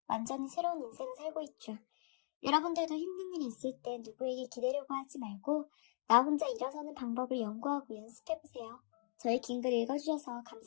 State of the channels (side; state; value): right; silent; digital silence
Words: 완전히 새로운 인생을 살고 있죠. 여러분들도 힘든 일이 있을 때 누구에게 기대려고 하지 말고 나 혼자 일어서는 방법을 연구하고 연습해보세요. 저희 긴 글 읽어주셔서